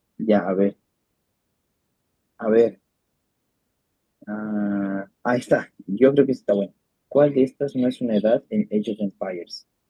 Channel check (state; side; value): identical; both; correlation 1.00